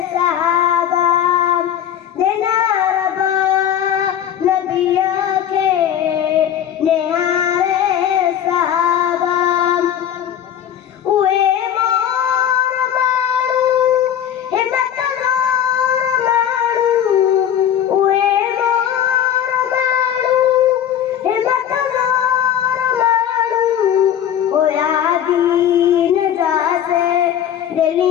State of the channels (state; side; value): quieter; right; 10.0 dB